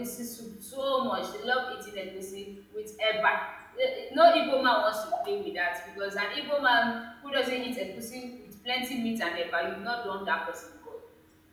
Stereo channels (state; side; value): identical; both; correlation 1.00